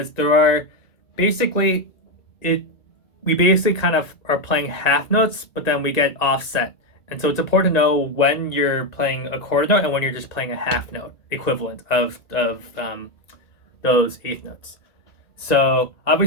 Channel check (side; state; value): right; late; 1.9 ms